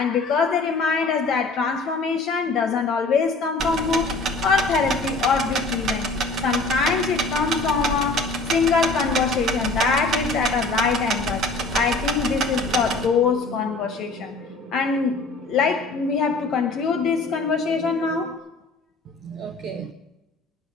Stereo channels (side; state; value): right; quieter; 3.4 dB